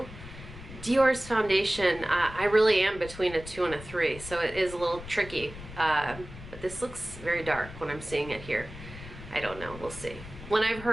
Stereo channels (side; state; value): left; noise; rumble, 14 dB below the sound